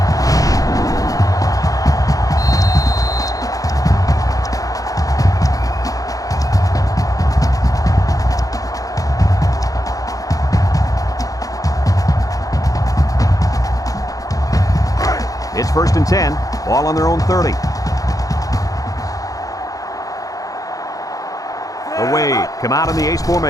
It's 1st and 10. Ball on their own 30. The Wade come out in the ace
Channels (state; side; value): late; right; 0.17 ms